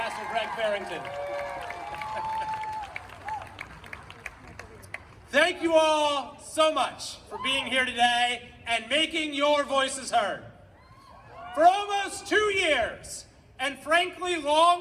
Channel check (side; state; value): both; identical; correlation 1.00